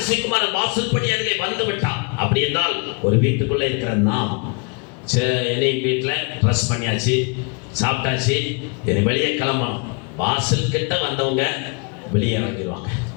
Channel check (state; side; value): quieter; right; 34.0 dB